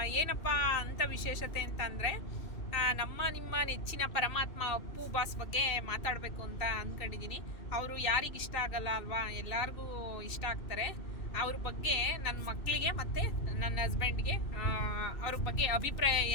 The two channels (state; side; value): late; right; 2.6 ms